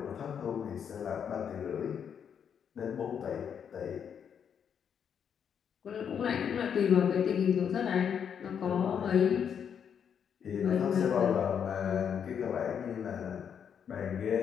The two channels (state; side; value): quieter; right; 7.8 dB